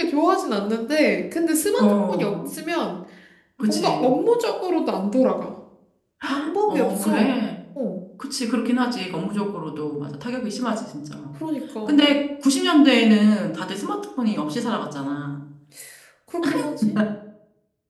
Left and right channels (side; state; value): both; identical; correlation 1.00